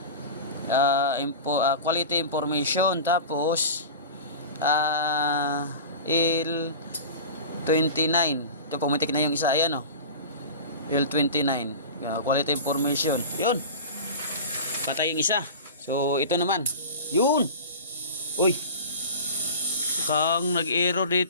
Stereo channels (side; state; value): both; inverted; correlation -0.33